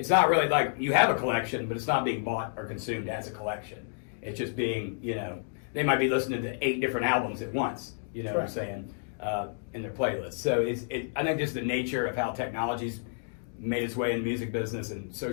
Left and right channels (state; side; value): silent; right; digital silence